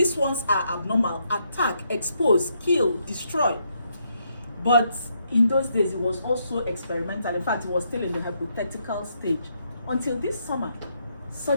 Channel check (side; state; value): both; inverted; correlation -0.76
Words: ones are abnormal, attack, expose, kill, destroy. But in those days, it was also experimental. In fact, it was still in the hypothetical stage. Until this summer,